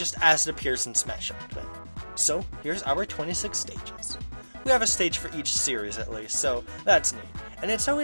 as it appears in Smash Ultimate. So here's our 26 stages. We have a stage for each series at least, so that's neat, and it's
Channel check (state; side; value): inverted; both; correlation -1.00